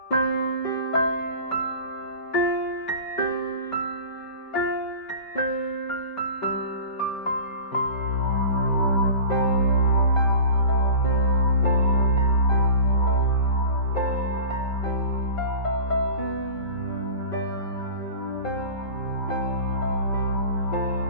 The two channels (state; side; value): late; right; 5.2 ms